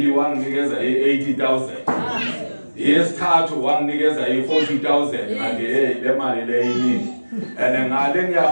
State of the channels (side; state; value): both; inverted; correlation -1.00